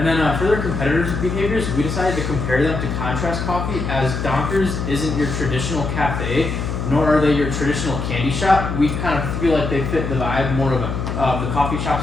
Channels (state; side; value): noise; left; hum, 3 dB below the sound